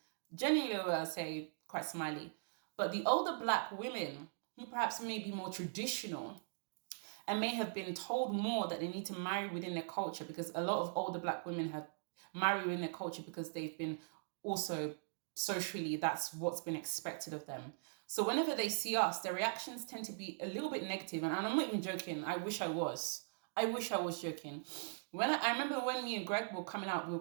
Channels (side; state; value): left; silent; digital silence